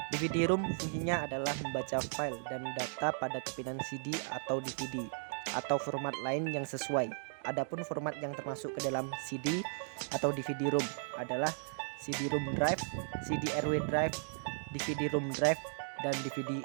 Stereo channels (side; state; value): left; silent; digital silence